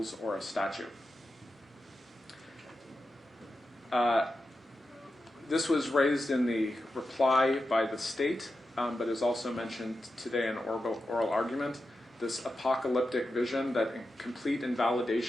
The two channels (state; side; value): normal; both; correlation 0.90